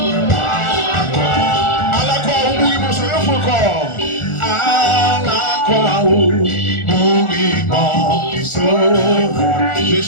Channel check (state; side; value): late; right; 1.4 ms